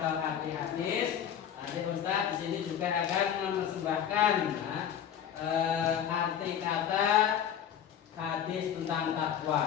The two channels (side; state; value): right; quieter; 9.2 dB